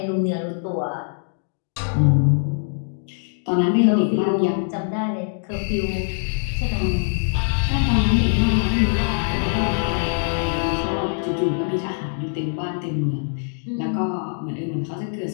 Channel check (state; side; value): silent; right; digital silence